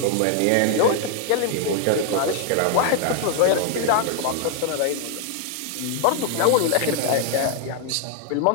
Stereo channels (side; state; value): both; different; correlation 0.00